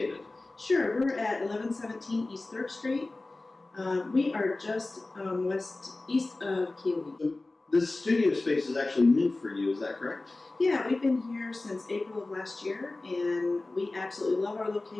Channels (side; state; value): right; quieter; 3.1 dB